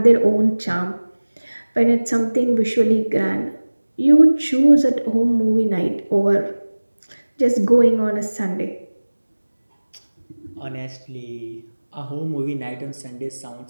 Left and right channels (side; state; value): both; inverted; correlation -1.00